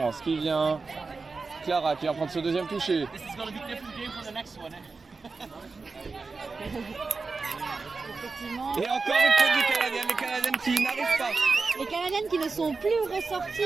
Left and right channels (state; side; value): quieter; left; 4.2 dB